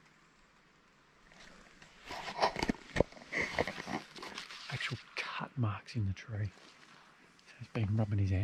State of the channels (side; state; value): both; identical; correlation 1.00